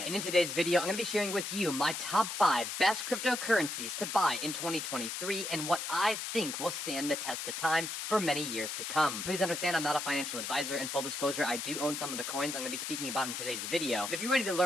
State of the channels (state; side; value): noise; left; hiss, 4 dB below the sound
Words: And in today's video, I'm going to be sharing with you my top 5 best cryptocurrencies to buy in 2023 and what I think will stand the test of time for many years to come. Please understand I'm not a financial advisor, and full disclosure, I do own some of the coins I'm going to be speaking about in today's video. But if you're ready to